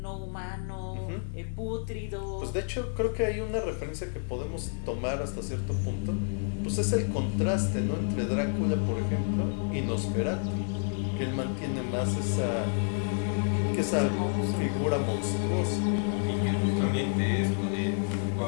humano, pútrido. Pues de hecho creo que hay una referencia que podemos tomar hasta cierto punto. Pues es el contraste, ¿no? Entre Drácula, por ejemplo, y Nosferatu, que él mantiene más esa figura monstruosa. Y que justamente esto de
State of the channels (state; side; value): silent; right; 58 dB below the other